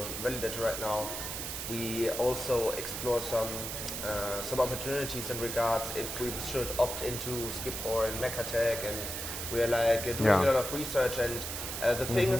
validator right now, we also explore some opportunities in regards if we should opt into Skip or in Mekatek, and we're like doing a lot of research, and the thing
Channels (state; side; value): noise; right; hiss, 5 dB below the sound